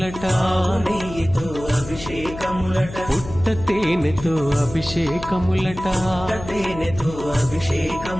ఆవు నెయ్యితో అభిషేకములట, పుట్ట తేనెతో అభిషేకములట, తేనెతో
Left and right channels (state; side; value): noise; left; hum, 12 dB below the sound